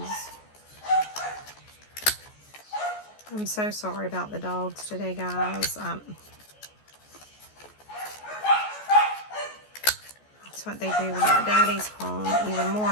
I'm so sorry about the dogs today, guys. That's what they do when their daddy's home, even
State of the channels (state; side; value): late; right; 14 ms